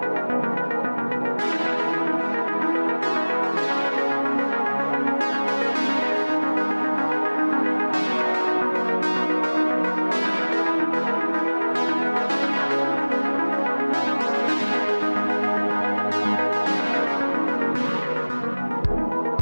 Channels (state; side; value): inverted; both; correlation -1.00